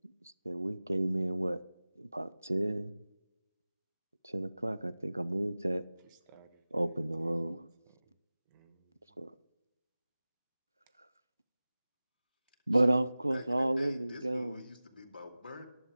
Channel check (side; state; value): both; inverted; correlation -0.97